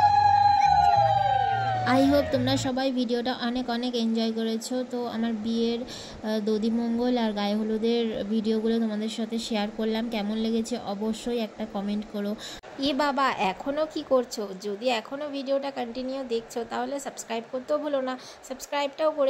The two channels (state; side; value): identical; both; correlation 1.00